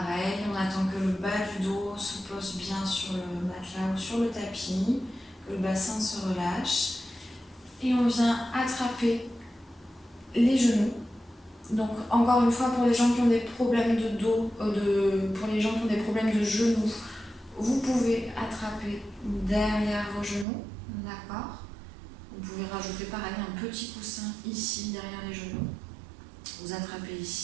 on attend que le bas du dos se pose bien sur le matelas ou sur le tapis, que le bassin se relâche. Et on vient attraper les genoux. Donc encore une fois, pour les gens qui ont des problèmes de dos, pour les gens qui ont des problèmes de genoux, vous pouvez attraper derrière vos genoux, d'accord? Vous pouvez rajouter pareil un petit coussin ici derrière les genoux. Vous attrapez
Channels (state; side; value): drops out; left; at 20.5 s